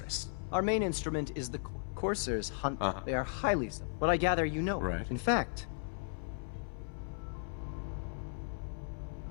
Our main instrument is the Corsairs hunt. They are highly but I gather you know. Right. In fact,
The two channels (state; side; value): silent; right; 54 dB below the other